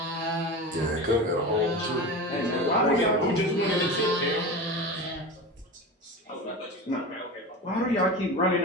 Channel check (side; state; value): both; normal; correlation 0.28